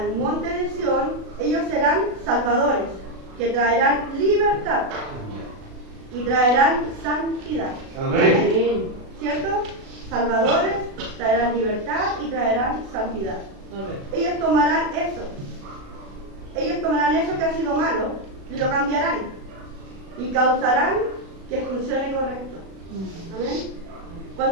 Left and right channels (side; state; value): left; late; 36 ms